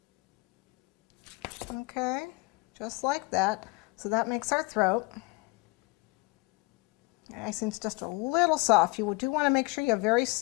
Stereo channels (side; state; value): right; quieter; 24.9 dB